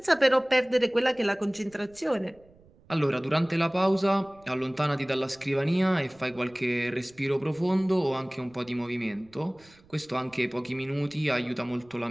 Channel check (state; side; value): noise; right; rumble, 28 dB below the sound